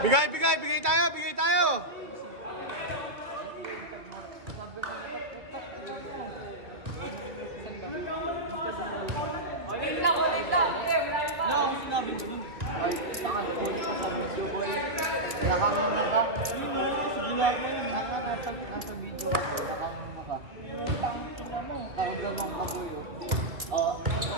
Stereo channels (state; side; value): late; left; 2.5 ms